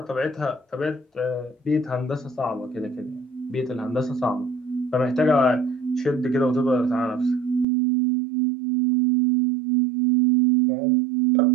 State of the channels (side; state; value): left; drops out; at 7.7 s